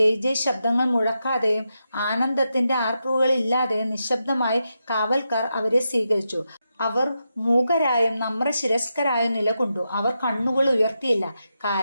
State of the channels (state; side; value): inverted; both; correlation -0.86